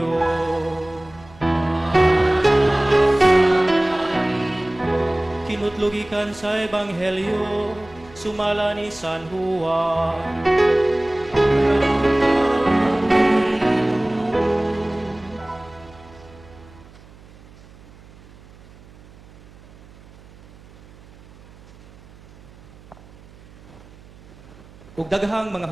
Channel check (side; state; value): right; noise; hum, 23 dB below the sound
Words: Kinutlugikan sa Ebanghelyo, sumala ni San Juan. Ug daghang mga